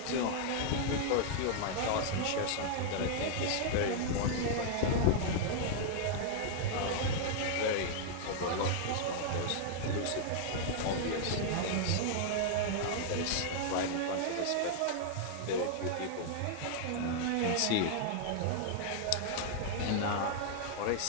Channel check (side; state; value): both; different; correlation -0.01